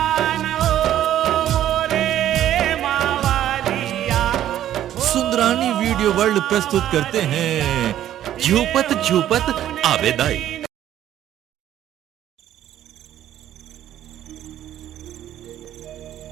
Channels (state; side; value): quieter; left; 11.9 dB